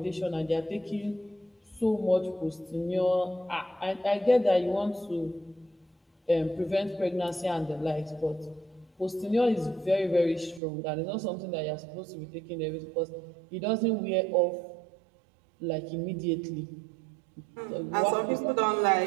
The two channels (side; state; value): left; drops out; at 10.6 s